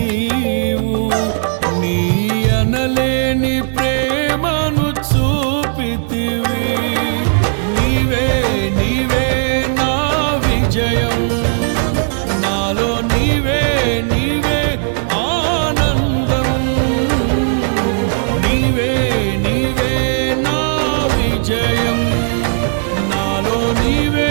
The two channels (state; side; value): silent; left; digital silence